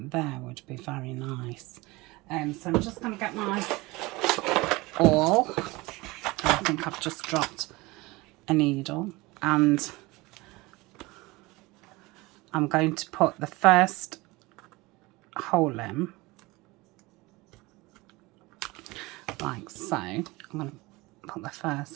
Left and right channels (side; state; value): left; quieter; 22.3 dB